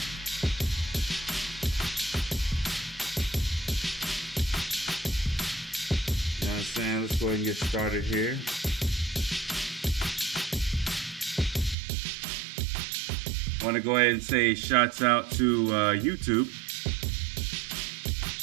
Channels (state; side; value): drops out; left; at 11.8 s